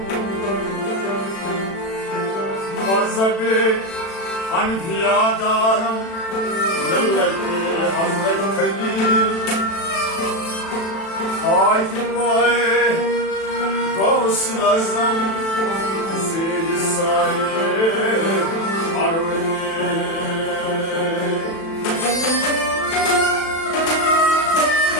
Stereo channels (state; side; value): late; right; 36 ms